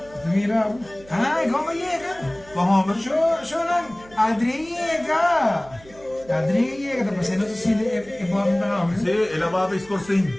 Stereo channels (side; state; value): right; noise; hum, 23 dB below the sound